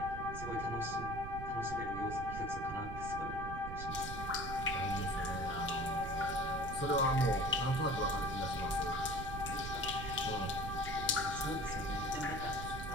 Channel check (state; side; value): noise; right; rumble, 7 dB below the sound